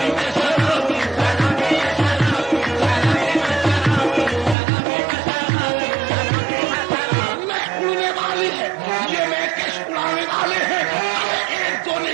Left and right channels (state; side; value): drops out; left; at 4.5 s